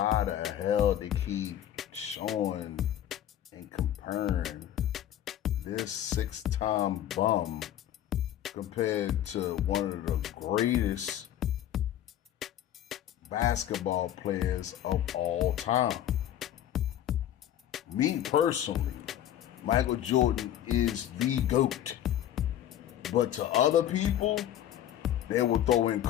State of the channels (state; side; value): quieter; right; 11.4 dB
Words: the hell they keep showing and comparing this six-time bum compared to one of the greatest basketball players of all time. Me personally, Michael Jordan is the GOAT. But to other people, they will throw in